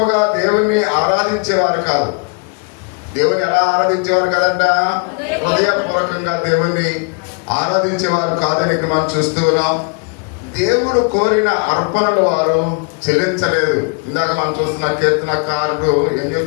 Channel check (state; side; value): quieter; right; 36.7 dB